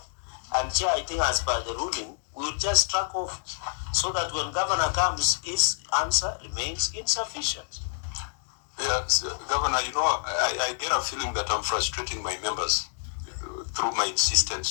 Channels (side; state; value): right; silent; digital silence